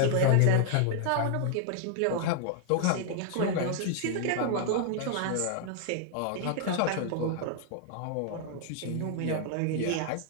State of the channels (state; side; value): different; both; correlation 0.00